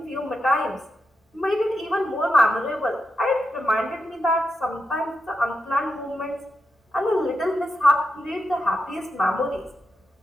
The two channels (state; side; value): normal; both; correlation 0.87